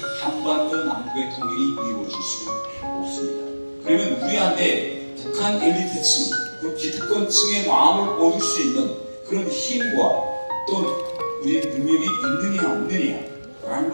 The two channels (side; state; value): both; inverted; correlation -1.00